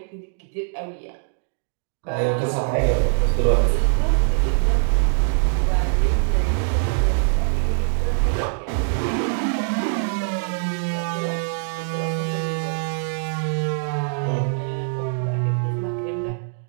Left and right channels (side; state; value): left; silent; digital silence